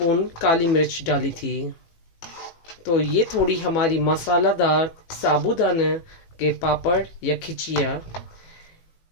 काली मिर्च डाली थी। तो ये थोड़ी हमारी मसालादार साबूदाना के पापड़ या खिचिया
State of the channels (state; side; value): late; right; 18 ms